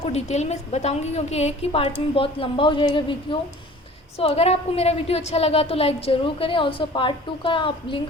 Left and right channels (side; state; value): both; normal; correlation 0.46